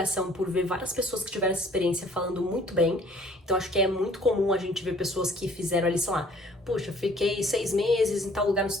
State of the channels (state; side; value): normal; both; correlation 0.55